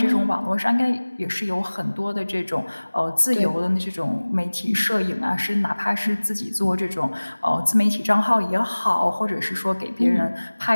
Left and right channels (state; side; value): inverted; both; correlation -1.00